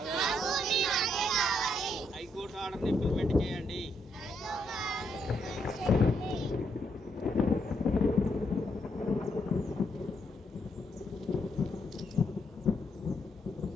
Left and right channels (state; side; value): normal; both; correlation 0.76